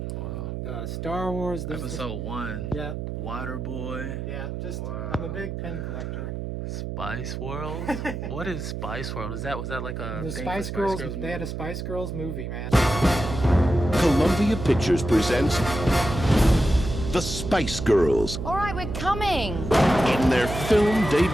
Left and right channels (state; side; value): noise; right; hum, 5 dB below the sound